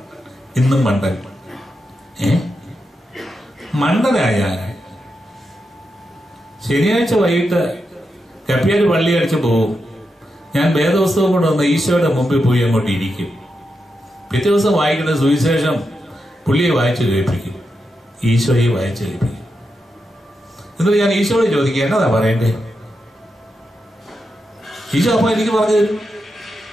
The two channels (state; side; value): normal; both; correlation 0.86